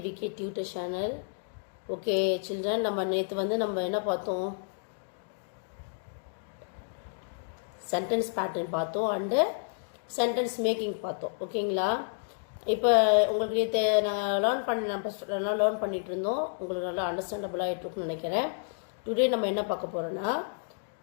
tutor channel. Okay children, நம்ம நேத்து நம்ம என்ன பார்த்தோம், sentence pattern பார்த்தோம் and sentence making பார்த்தோம். ஓகேங்களா? இப்போ உங்களுக்கு நேத்து நான் லேர்ன் பண்ணிட்டு இருந்தோம். உங்களுக்கு நல்லா அண்டர்ஸ்டாண்டபிள் ஆயிட்டு இருக்குன்னு நினைக்கிறேன். டுடே நம்ம என்ன பார்க்க போறோம்னா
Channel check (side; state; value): right; silent; digital silence